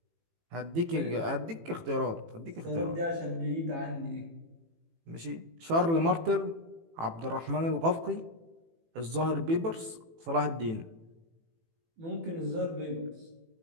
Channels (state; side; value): late; left; 18 ms